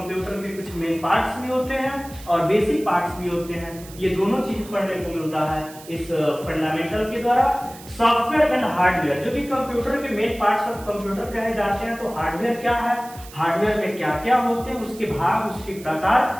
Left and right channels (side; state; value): right; noise; hiss, 18 dB below the sound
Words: के कुछ मेन पार्ट्स भी होते हैं और बेसिक पार्ट्स भी होते हैं, ये दोनों चीज पढ़ने को मिलता है इस फंडामेंटल के द्वारा। सॉफ्टवेयर एंड हार्डवेयर, जो कि कंप्यूटर के मेन पार्ट्स ऑफ कंप्यूटर कहे जाते हैं। तो हार्डवेयर क्या है, हार्डवेयर में क्या क्या होते हैं, उसके भाग, उसके